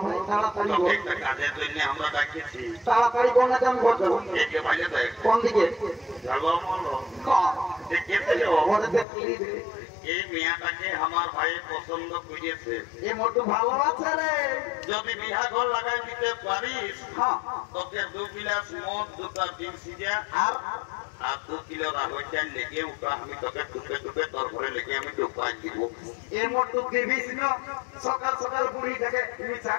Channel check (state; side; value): drops out; right; at 9.1 s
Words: ভাই তাড়াতাড়ি বল। একটা কাজের জন্য আমরা ডাকেছি। তাড়াতাড়ি কোন যান বলছো? একে ভাইলে দেখ কোন দিকে? ঝালবা মলো দেখতে ওরে দেখলি এই মেয়াটাকে আমার ভাই পছন্দ করেছে। এ মোটু ভালো আছে রে। যদি বিহা ঘর লাগাই দিতে পারিস, তোকে 2 গিলাস মদ, 2টা ডিম সিজা আর 2 কিলো রাহর চাল লেগে উঠা আমি তোকে টুকে টুকে তোর ঘরে লেগে আমি ঢুকাই দিব। এ মোটু দিবিস না সকাল সকাল বুড়ি থেকে মিছা